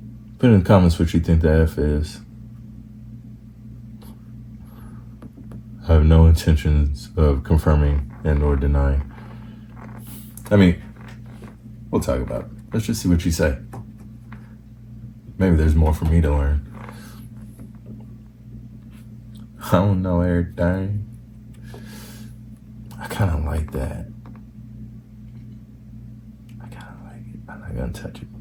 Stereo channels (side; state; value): both; identical; correlation 1.00